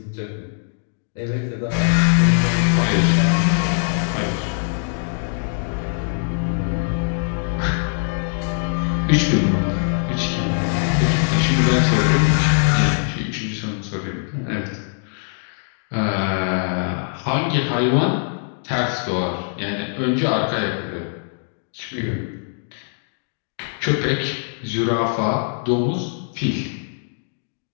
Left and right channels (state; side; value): silent; right; digital silence